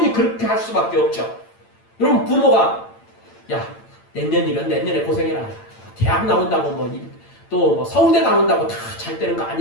그렇게 할 수밖에 없죠. 여러분 부모가 야 내년이면 내년에 고생해라. 대학 나온다고 또 서울대 나온다고 다 잘 되는 거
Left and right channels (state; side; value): late; right; 8.9 ms